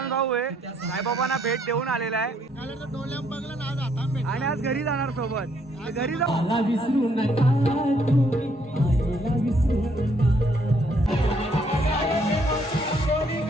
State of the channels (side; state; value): both; normal; correlation 0.69